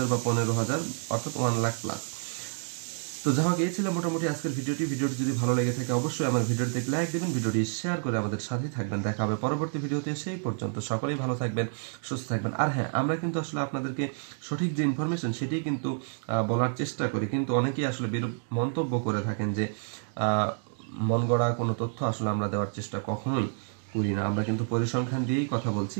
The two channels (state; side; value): silent; left; 59 dB below the other